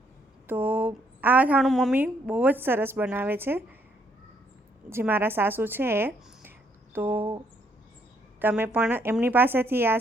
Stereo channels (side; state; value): both; normal; correlation 0.70